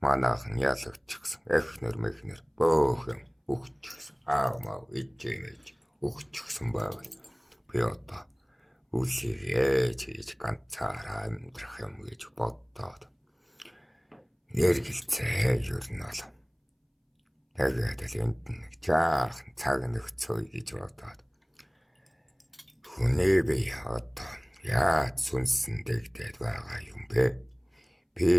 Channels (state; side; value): identical; both; correlation 1.00